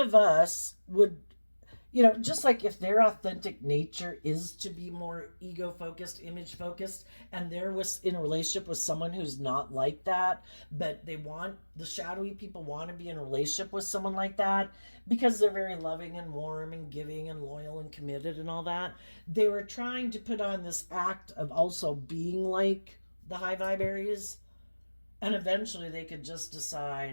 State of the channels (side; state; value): both; inverted; correlation -1.00